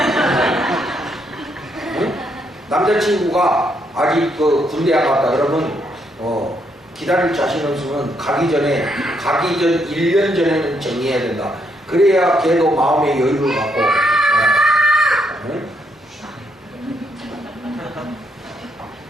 응? 남자친구가 아직 그 군대 안 갔다 그러면 기다릴 자신 없으면 가기 전 1년 전에는 정리해야 된다. 그래야 걔도 마음의 여유를 갖고 응?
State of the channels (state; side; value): normal; both; correlation 0.75